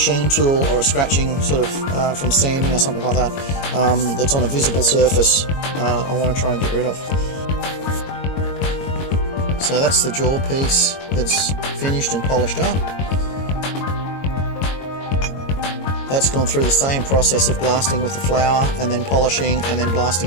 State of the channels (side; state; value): right; late; 22 ms